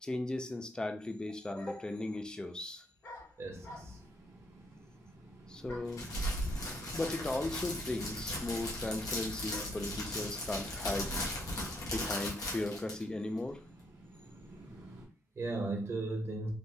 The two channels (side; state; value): both; normal; correlation 0.72